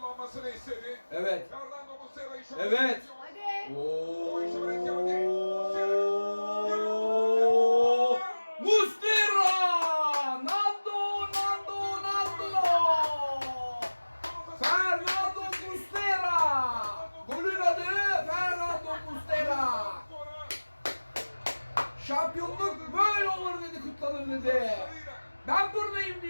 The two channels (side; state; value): both; inverted; correlation -1.00